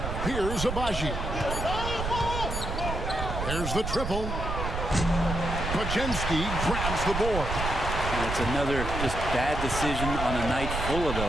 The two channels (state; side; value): noise; right; rumble, 4 dB below the sound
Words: Here's Abaji. There's the triple. Podziemski grabs the board. And it's another just bad decision on a night full of